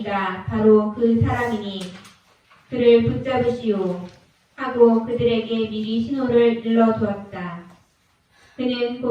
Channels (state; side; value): identical; both; correlation 1.00